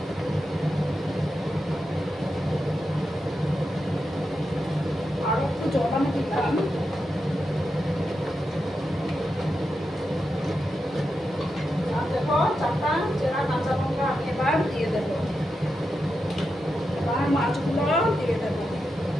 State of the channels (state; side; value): normal; both; correlation 0.87